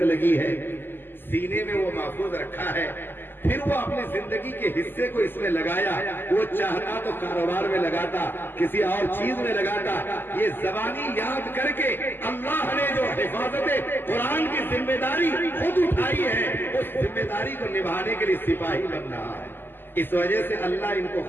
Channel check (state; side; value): late; right; 0.097 ms